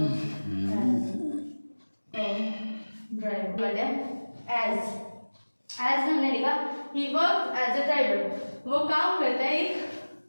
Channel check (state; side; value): inverted; both; correlation -1.00